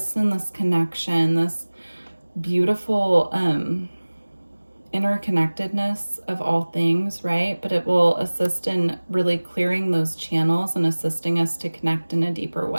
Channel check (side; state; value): both; inverted; correlation -1.00